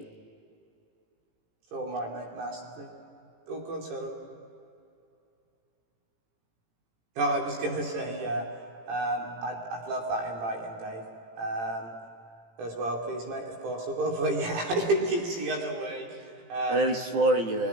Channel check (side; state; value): left; late; 18 ms